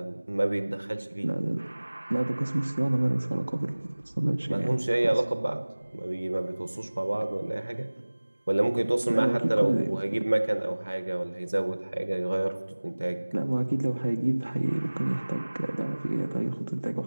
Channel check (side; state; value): both; inverted; correlation -1.00